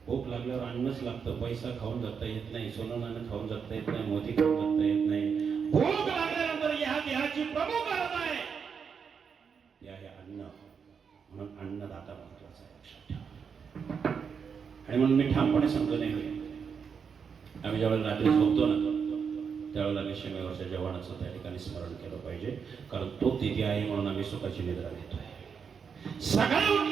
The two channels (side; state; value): left; quieter; 6.4 dB